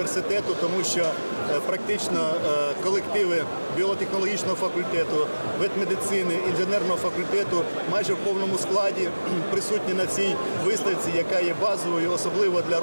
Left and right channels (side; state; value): both; inverted; correlation -1.00